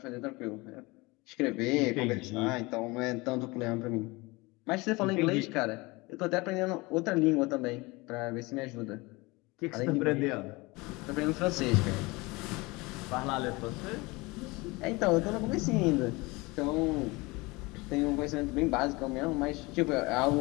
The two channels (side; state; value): right; quieter; 23.9 dB